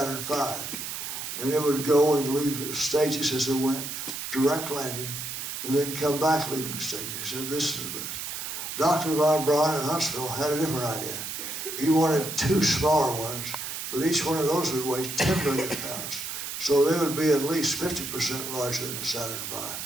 V. And it would go and leave stages as it went, direct landing, and then come back leaving stages. He said, this is the best. Dr. von Braun in Huntsville had a different idea. He wanted 2 smaller ones, but each one of those would weigh 10 million pounds. So they would be at least 50% larger than the Saturn V.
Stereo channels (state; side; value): noise; right; hiss, 6 dB below the sound